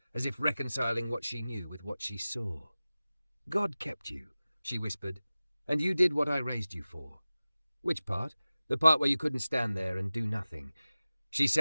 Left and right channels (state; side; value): inverted; both; correlation -0.97